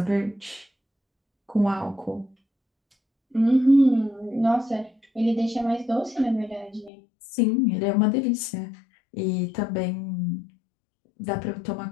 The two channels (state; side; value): drops out; right; at 6.9 s